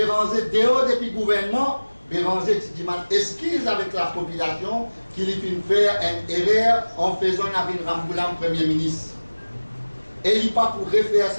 dehors depuis le gouvernement, Béranger dit excuse avec la population qu'il finit faire une erreur en faisant avec Ramboulam Premier ministre. Et il n'est pas pour refaire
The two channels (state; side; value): inverted; both; correlation -1.00